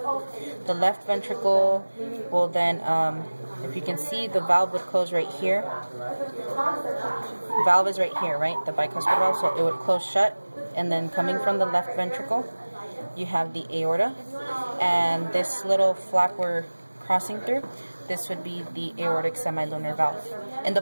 The left ventricle will then, if you can see, the valve would close right here. Valve is right here, right? The bicuspid valve, so it would close shut. And then coming from the left ventricle, you have the aorta. And this little flap we're crossing through, this would be the aortic semilunar valve. In the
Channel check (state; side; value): inverted; both; correlation -1.00